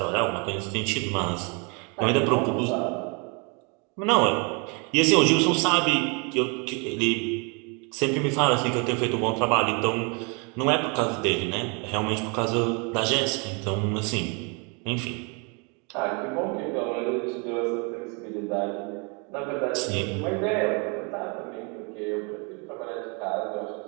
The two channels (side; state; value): left; quieter; 33.3 dB